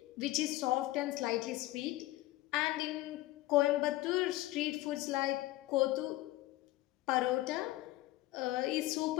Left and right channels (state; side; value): quieter; right; 17.6 dB